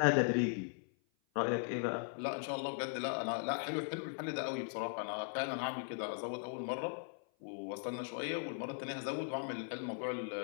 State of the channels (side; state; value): right; silent; 52 dB below the other